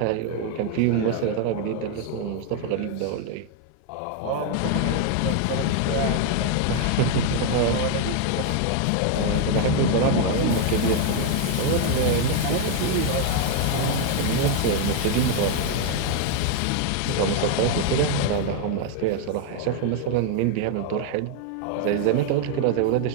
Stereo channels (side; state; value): both; different; correlation 0.00